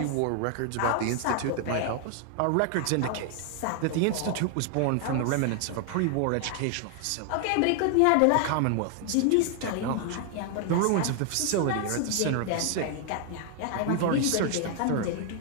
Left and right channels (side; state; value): both; different; correlation 0.00